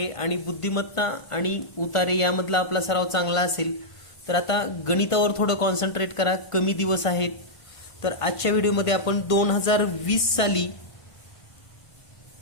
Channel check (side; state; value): right; late; 1.5 ms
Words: आणि बुद्धिमत्ता आणि उतारे यामधला आपला सराव चांगला असेल तर आता गणितावर थोडं कॉन्सन्ट्रेट करा. कमी दिवस आहेत. तर आजच्या व्हिडिओमध्ये आपण 2020 साली